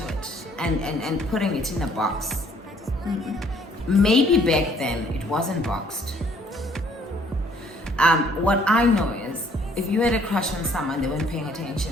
it and putting it in a box. Maybe back then it wasn't boxed. What I know is, if you had a crush on someone, they weren't paying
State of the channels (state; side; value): normal; both; correlation 0.62